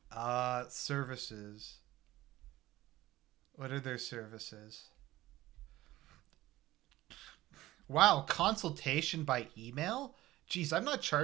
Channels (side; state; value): left; quieter; 16.5 dB